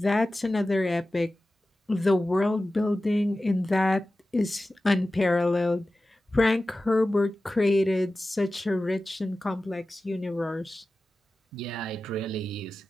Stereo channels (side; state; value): both; normal; correlation 0.95